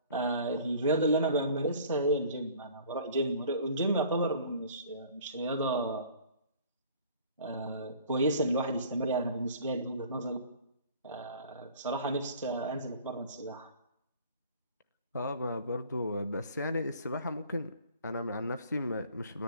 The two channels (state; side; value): inverted; both; correlation -0.50